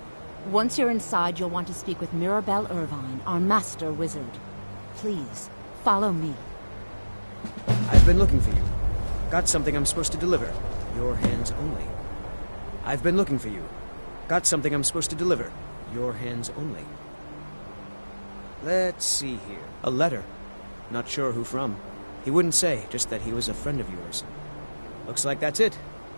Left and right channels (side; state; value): both; inverted; correlation -1.00